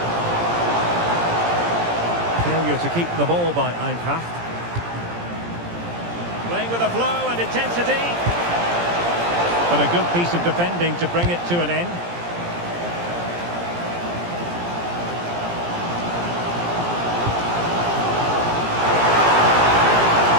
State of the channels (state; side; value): late; left; 17 ms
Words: Failure to keep the ball by Eintracht. Playing with a flow and intensity. But a good piece of defending to bring it to an end.